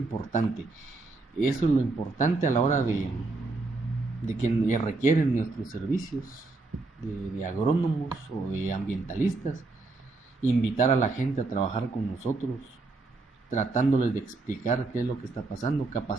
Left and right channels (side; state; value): left; quieter; 3.5 dB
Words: Eso es lo importante a la hora de que requieren nuestros servicios de agrónomos o de ambientalistas. Invitar a la gente a trabajar con nosotros, tratándoles de explicar qué es lo que está pasando,